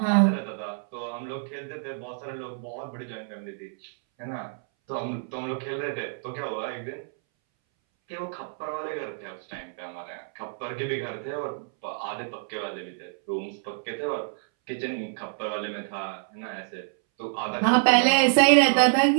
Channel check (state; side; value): silent; left; 60 dB below the other